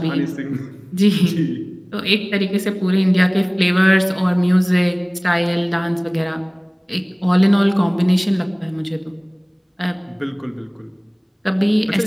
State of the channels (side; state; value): both; identical; correlation 1.00